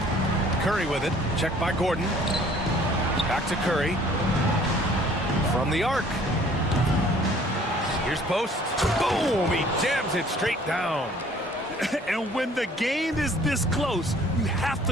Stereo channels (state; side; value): normal; both; correlation 0.55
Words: Curry with it. Checked by Gordon. Back to Curry. From the arc. Here's post. Boom! He jams it straight down. And when the game is this close, you have